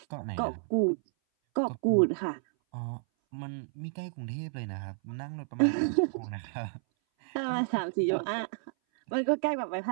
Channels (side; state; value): left; silent; 57 dB below the other